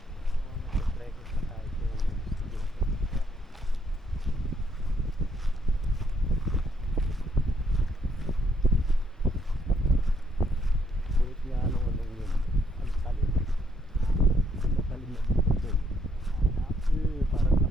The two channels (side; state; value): both; normal; correlation 0.71